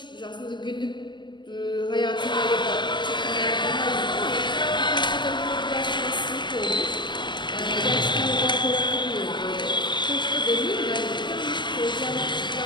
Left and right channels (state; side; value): late; right; 0.22 ms